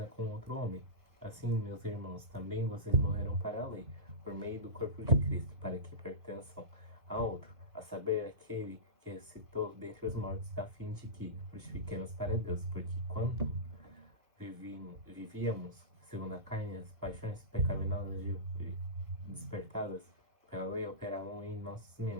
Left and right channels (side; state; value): left; late; 1.3 ms